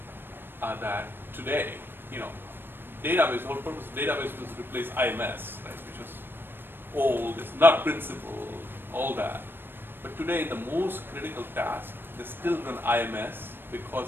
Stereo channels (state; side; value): late; left; 0.098 ms